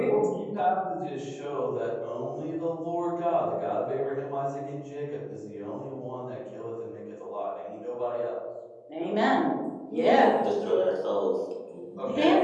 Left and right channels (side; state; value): both; identical; correlation 1.00